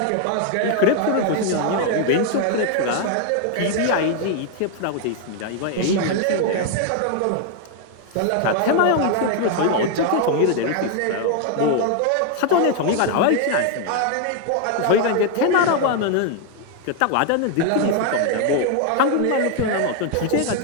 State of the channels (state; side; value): different; both; correlation 0.00